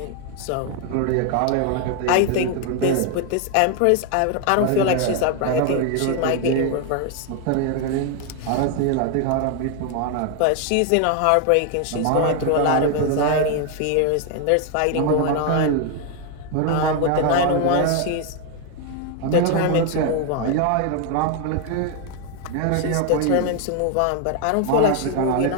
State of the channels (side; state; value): both; different; correlation 0.01